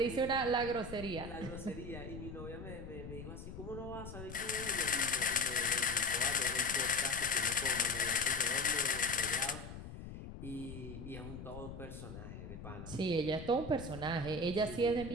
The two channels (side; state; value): left; noise; rumble, 10 dB below the sound